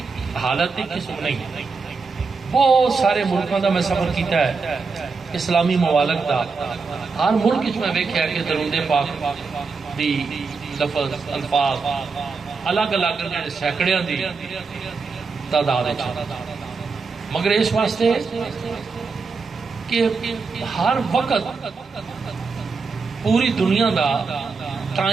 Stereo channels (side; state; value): left; quieter; 4.6 dB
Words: حالت ایک قسم نہیں، بہت سارے ملکوں دا میں سفر کیتا ہے، اسلامی ممالک دا، ہر ملک اس میں ویکھیا کہ درود پاک دی لفظ الفاظ الگ الگ سینکڑیاں دی تعداد ہے، مگر اس واسطے کہ ہر وقت پوری دنیا دا